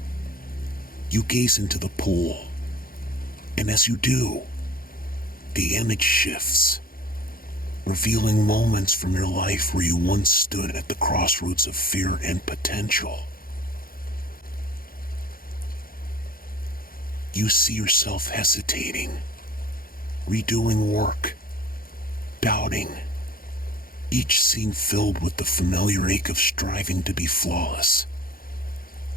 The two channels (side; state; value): right; late; 0.42 ms